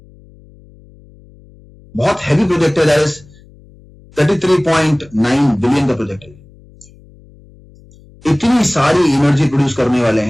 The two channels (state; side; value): noise; left; hum, 26 dB below the sound